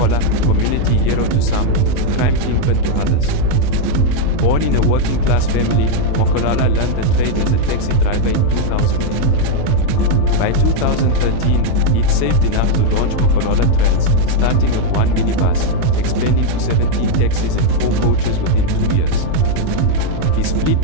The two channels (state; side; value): different; both; correlation 0.01